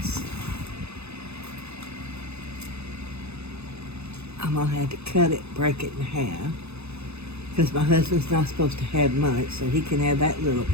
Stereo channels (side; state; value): left; late; 0.80 ms